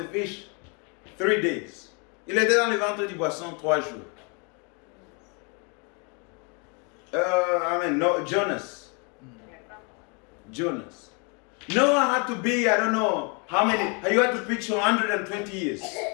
fish 3 days. Il était dans le ventre du poisson 3 jours. Jonas. Noah had to be, I don't know how many, you had to preach for 120 years.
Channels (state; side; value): quieter; right; 33.9 dB